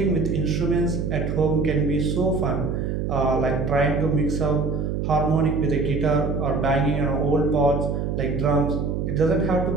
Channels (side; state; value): right; noise; hum, 1 dB below the sound